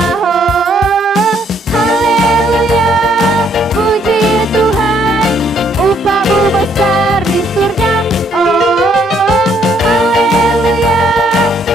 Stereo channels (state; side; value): normal; both; correlation 0.68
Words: Oh, haleluya, puji Tuhan, upah-Mu besar di surga. Oh, haleluya,